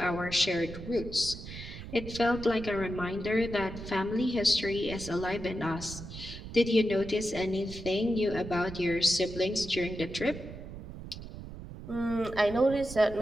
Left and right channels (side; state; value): right; noise; rumble, 11 dB below the sound